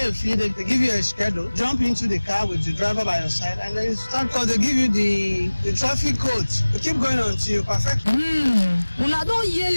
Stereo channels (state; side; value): inverted; both; correlation -1.00